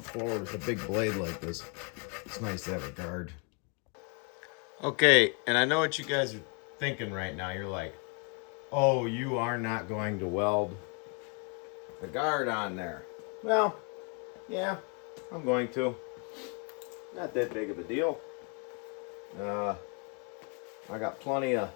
forward with a big blade like this. It's nice to have a guard. Okay, and I know what you guys are thinking right now. You're like, oh, you are not going to weld the guard on there. Well, yeah, I'm going to. Not that big of a deal. I got plenty of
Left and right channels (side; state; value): right; quieter; 35.7 dB